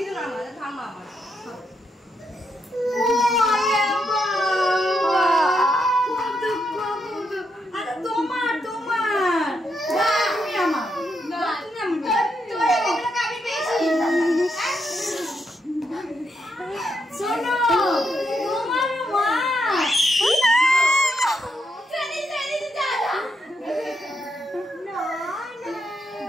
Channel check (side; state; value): both; normal; correlation 0.80